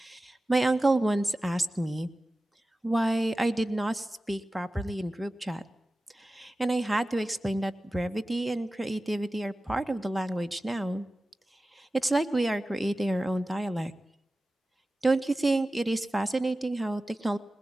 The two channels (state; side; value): normal; both; correlation 0.96